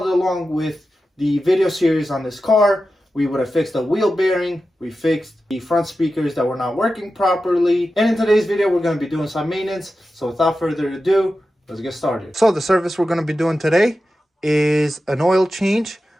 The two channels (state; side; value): normal; both; correlation 0.92